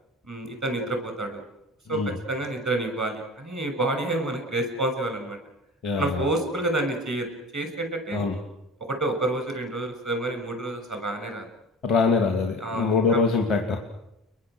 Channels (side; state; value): both; normal; correlation 0.36